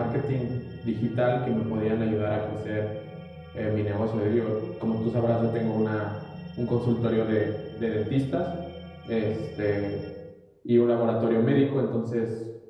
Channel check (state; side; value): identical; both; correlation 1.00